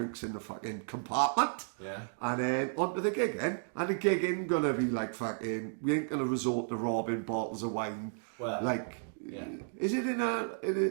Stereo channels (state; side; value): silent; left; digital silence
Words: in the fucking compartment. Yeah. And then on to the gig then. And the gig ain't gonna be like fucking, we ain't gonna resort to robbing bottles of wine. Well, like, yeah. Is it in